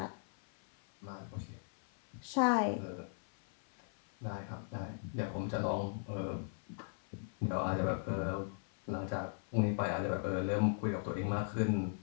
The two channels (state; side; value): silent; right; 53 dB below the other